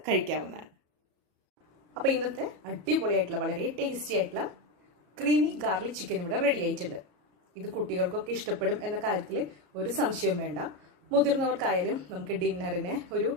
കഴിക്കാവുന്നതാണ്. അപ്പോൾ ഇന്നത്തെ അടിപൊളിയായിട്ടുള്ള വളരെ ടേസ്റ്റി ആയിട്ടുള്ള ക്രീമി ഗാർലിക് ചിക്കൻ ഇവിടെ റെഡി ആയിട്ടുണ്ട്. ഇത് കുട്ടികൾക്കൊക്കെ ഇഷ്ടപ്പെടും എന്ന കാര്യത്തിൽ ഒരു സംശയവും വേണ്ട. മുതിർന്നവർക്കായാലും നമുക്ക് ഡിന്നറിന് ഒരു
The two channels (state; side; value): late; left; 34 ms